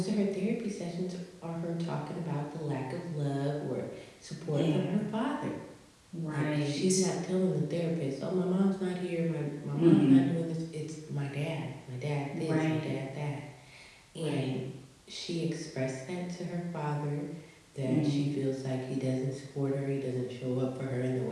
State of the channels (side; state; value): both; identical; correlation 1.00